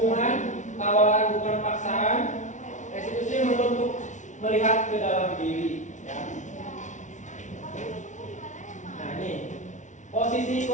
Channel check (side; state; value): right; late; 0.36 ms